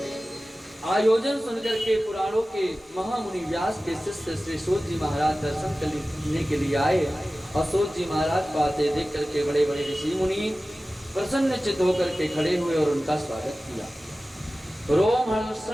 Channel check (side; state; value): both; normal; correlation 0.96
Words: आयोजन सुनकर के पुराणों के महामुनि व्यास के शिष्य श्री सूत जी महाराज दर्शन करने के लिए आए। और सूत जी महाराज को आते देख करके बड़े बड़े ऋषि मुनि प्रसन्नचित्त होकर के खड़े हुए और उनका स्वागत किया। रोम